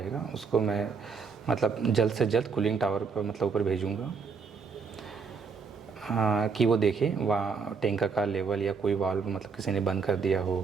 उसको मैं मतलब जल्द से जल्द कूलिंग टावर पर मतलब ऊपर भेजूँगा कि वो देखे वहाँ टैंक का लेवल या कोई वाल्व मतलब किसी ने बंद कर दिया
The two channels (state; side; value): quieter; left; 5.2 dB